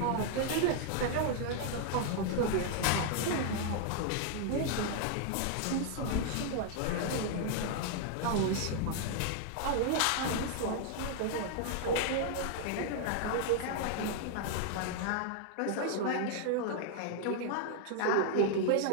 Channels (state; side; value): different; both; correlation 0.00